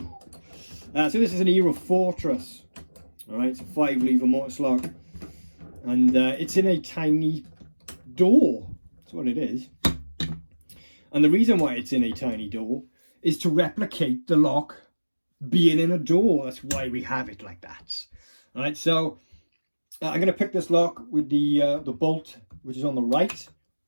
So this is an Era Fortress. Alright, it's a 5-lever mortise lock, and it's in a tiny door. That's what it is. And the reason why it's in a tiny door is to replicate the lock being in a door. That's why we have it like that. Alright, so I'm going to pick this lock with the bolt which is on the right.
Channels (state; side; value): inverted; both; correlation -1.00